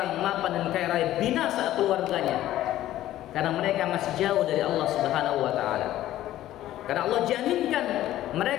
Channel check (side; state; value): right; quieter; 13.8 dB